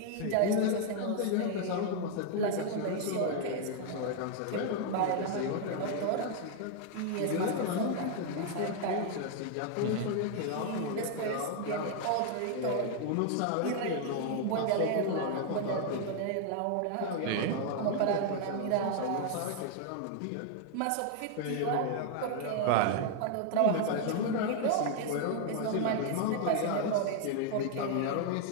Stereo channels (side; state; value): both; different; correlation 0.00